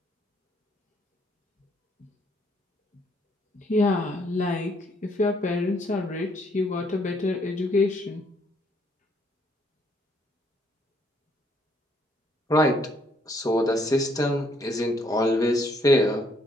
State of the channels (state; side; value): normal; both; correlation 0.68